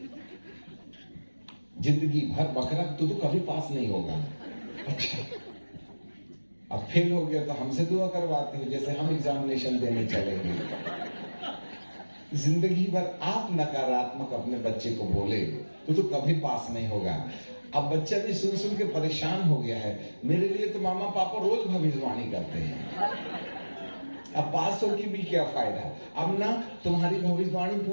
जिंदगी भर बकरा तो कभी पास नहीं होगा। अच्छा, अब फेल हो गया तो हमसे दुआ करवाते हो, जैसे हम एग्जामिनेशन देने चलेंगे। जिंदगी भर आप नकारात्मक अपने बच्चे को बोले तो कभी पास नहीं होगा। अब बच्चा भी सुन सुन के परेशान हो गया है, मेरे लिए तो मामा पापा रोज भविष्यवाणी करते हैं, अब पास होगी भी क्या फायदा, अब ना तुम्हारी भविष्यवाणी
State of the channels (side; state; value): both; inverted; correlation -1.00